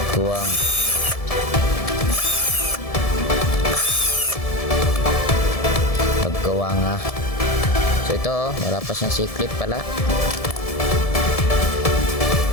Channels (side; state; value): right; late; 1.7 ms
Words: Kuwang paggawa nga. So ito wala pa siyang C-clip pala.